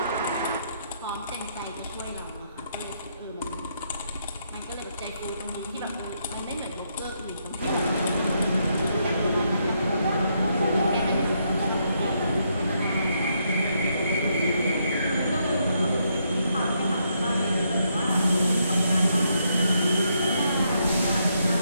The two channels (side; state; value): both; inverted; correlation -0.77